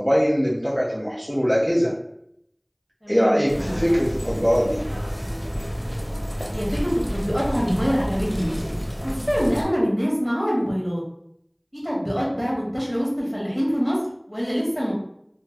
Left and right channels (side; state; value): both; identical; correlation 1.00